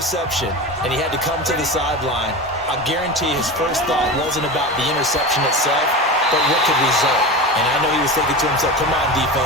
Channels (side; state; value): both; normal; correlation 0.26